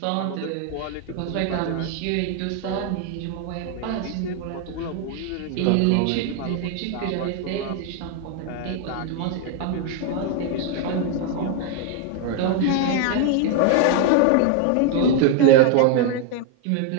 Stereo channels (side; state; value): both; different; correlation 0.01